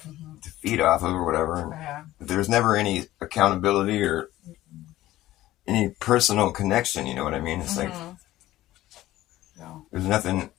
Feed off of or whatever. Yeah. There's never any accountability or any personal connection. You know what I mean? It's like there's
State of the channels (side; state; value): right; quieter; 15.5 dB